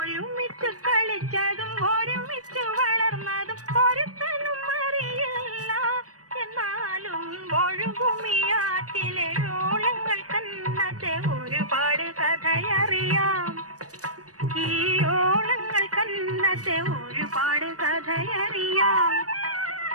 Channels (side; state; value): left; late; 0.66 ms